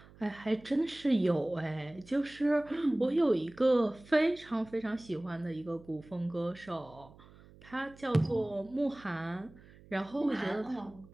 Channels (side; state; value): right; noise; hum, 23 dB below the sound